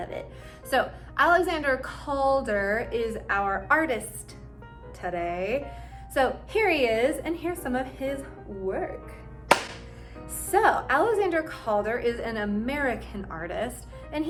it. So Alexander Calder is our artist today. So here he is, and here's some of his work. So Alexander Calder is an American artist, and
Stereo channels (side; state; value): both; identical; correlation 1.00